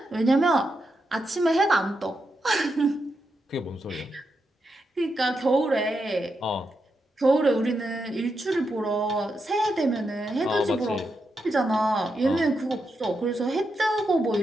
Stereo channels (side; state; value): both; normal; correlation 0.85